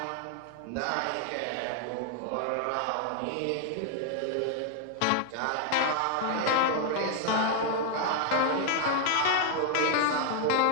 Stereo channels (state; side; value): different; both; correlation 0.00